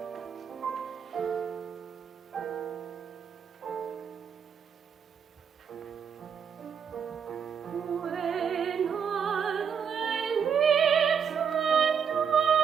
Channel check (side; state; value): left; quieter; 7.1 dB